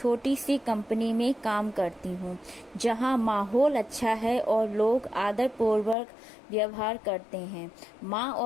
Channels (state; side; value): drops out; right; at 6.0 s